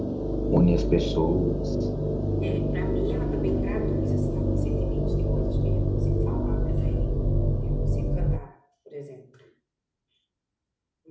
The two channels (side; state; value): both; identical; correlation 1.00